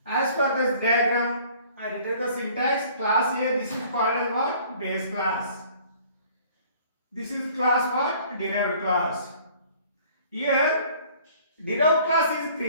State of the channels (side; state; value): both; inverted; correlation -0.53